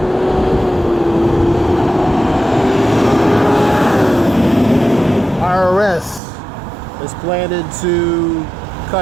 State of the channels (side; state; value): left; drops out; at 6.2 s